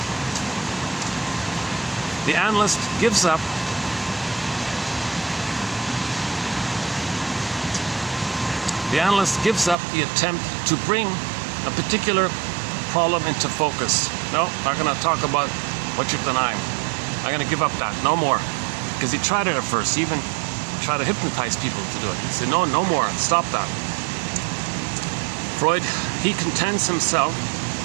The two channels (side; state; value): left; drops out; at 9.8 s